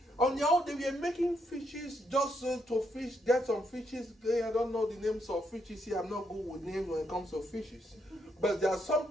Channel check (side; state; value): both; normal; correlation 0.77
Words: On your own, they were making fishes just to fish, get some fishes. I don't know the names of fishes here. I'm not good with names when it comes to fishes. But there are